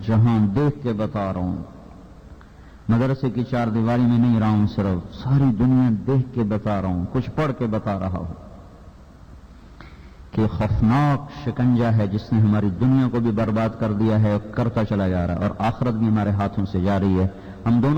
جہان دیکھ کے بتا رہا ہوں، مدرسے کی چار دیواری میں نہیں رہا ہوں، صرف ساری دنیا دیکھ کے بتا رہا ہوں، کچھ پڑھ کے بتا رہا ہوں کہ خوفناک شکنجہ ہے جس نے ہماری دنیا کو بھی برباد کر دیا ہے، کرتا چلا جا رہا ہے، اور آخرت بھی ہمارے ہاتھوں سے جا رہی ہے۔ ہم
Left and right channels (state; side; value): identical; both; correlation 1.00